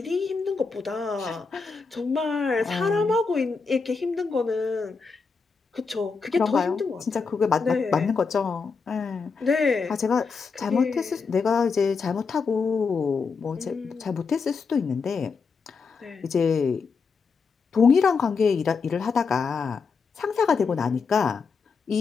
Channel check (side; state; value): right; quieter; 5.0 dB